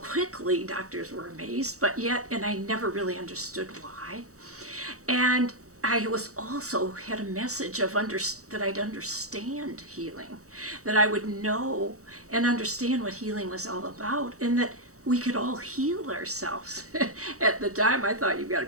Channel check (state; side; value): late; left; 0.65 ms